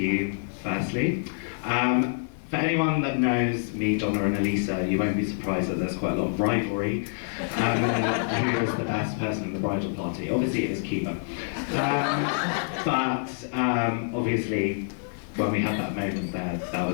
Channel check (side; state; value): right; silent; digital silence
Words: firstly. For anyone that knows me, Donna and Elisa, you won't be surprised that there's quite a lot of rivalry who is the best person in the bridal party. Obviously it is Kiva. But obviously when we had that moment there, that